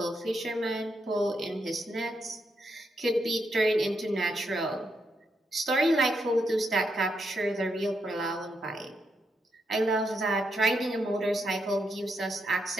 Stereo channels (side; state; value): both; normal; correlation 0.81